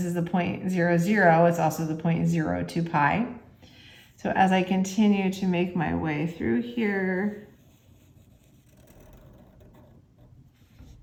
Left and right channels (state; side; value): identical; both; correlation 1.00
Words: is the point 0, 0. It's also the point 0, 2 pi. So as I continue to make my way through here,